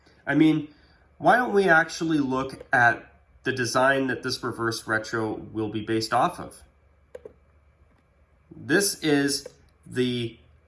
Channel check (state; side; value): identical; both; correlation 1.00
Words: I mean, why don't we actually look at the design that this reverse retro will be based off of? This is the